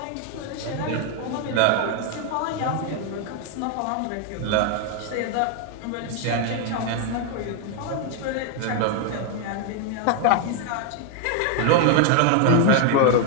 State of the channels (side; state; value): both; different; correlation 0.01